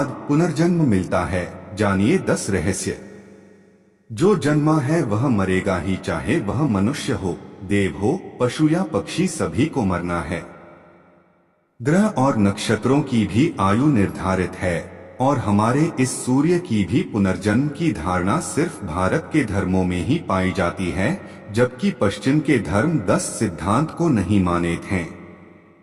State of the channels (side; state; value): both; identical; correlation 1.00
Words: पुनर्जन्म मिलता है? जानिए 10 रहस्य। जो जन्मा है वह मरेगा ही, चाहे वह मनुष्य हो, देव हो, पशु या पक्षी, सभी को मरना है। ग्रह और नक्षत्रों की भी आयु निर्धारित है और हमारे इस सूर्य की भी पुनर्जन्म की धारणा सिर्फ भारत के धर्मों में ही पाई जाती है, जबकि पश्चिम के धर्म 10 सिद्धांत को नहीं मानते हैं।